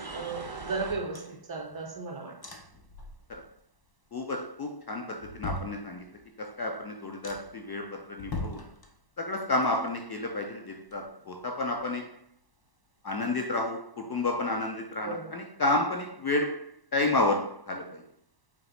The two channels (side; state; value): right; late; 1.0 ms